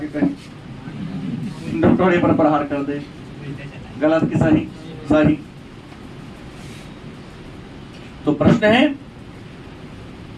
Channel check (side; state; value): both; identical; correlation 1.00